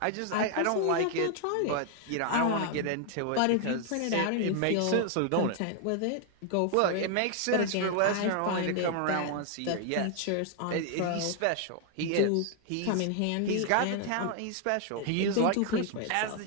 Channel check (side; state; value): both; different; correlation 0.00